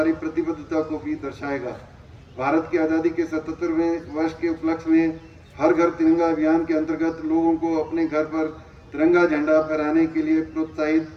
प्रतिबद्धता को भी दर्शाएगा। भारत की आज़ादी के 77वें वर्ष के उपलक्ष्य में हर घर तिरंगा अभियान के अंतर्गत लोगों को अपने घर पर तिरंगा झंडा फहराने के लिए प्रोत्साहित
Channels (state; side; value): identical; both; correlation 1.00